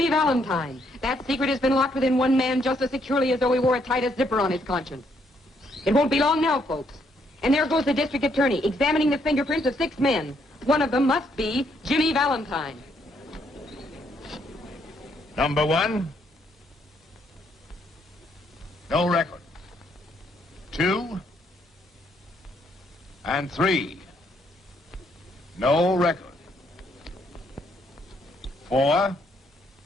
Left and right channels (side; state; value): both; normal; correlation 0.72